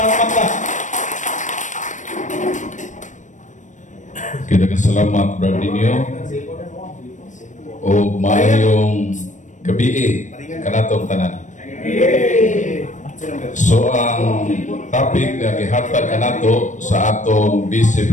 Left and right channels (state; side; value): late; right; 0.36 ms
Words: Pagba. Kita salamat, Brad Dinyo. O maayong gabi kanatong tanan. So ang topic na gihatag kanato sa atong Vice